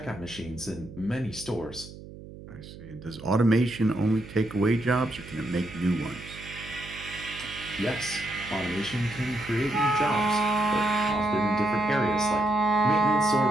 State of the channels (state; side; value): noise; right; hum, 15 dB below the sound